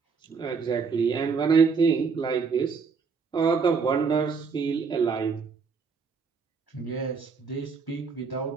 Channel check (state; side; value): quieter; left; 5.3 dB